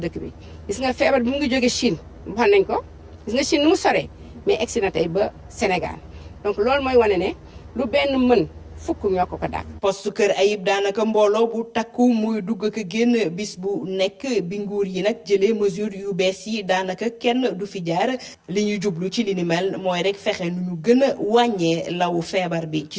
bi gis nga feebar bi mu ngi jóge Chine wax nañ ko gis nga Chine nu mu soree mais egsi na tey ba Sénégal donc loolu mooy wane ne lu benn mën fukk ñoo ko dàq. poste Kër Ayib daanaka mbooloo bu takku muy dugg ak génn bis bu nekk bi nguur yi nag jëlee mesure yu bees yi daanaka kenn du fi jaar li ñuy jublu ci li ni mel mooy rek fexe nu ñu gën a wàññee law feebar bi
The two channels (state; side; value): identical; both; correlation 1.00